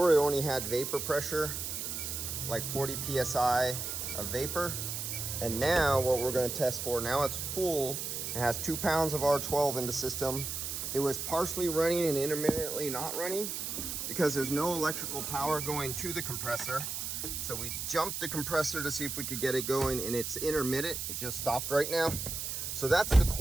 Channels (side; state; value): right; noise; hiss, 4 dB below the sound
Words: it only had vapor pressure, like 40 psi of vapor. And now what we're going to test for, now it's full. It has 2 pounds of R12 in the system. It was partially running and intermittently not running because there's no electrical power going to the compressor. So we jumped the compressor to see if we could get it going, and it's intermittent. It just stopped right now. So that's the